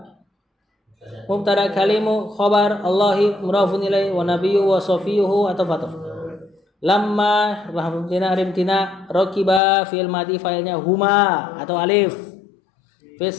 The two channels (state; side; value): drops out; right; at 9.6 s